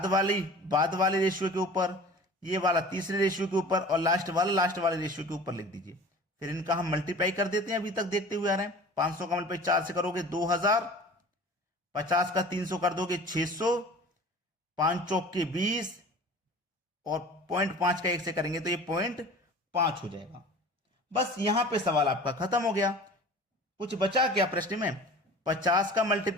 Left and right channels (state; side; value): normal; both; correlation 0.41